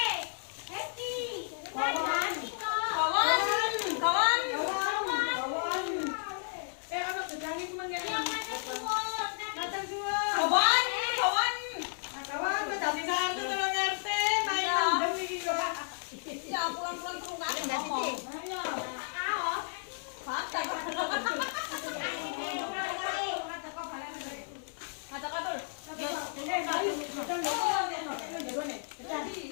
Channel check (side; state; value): right; silent; 56 dB below the other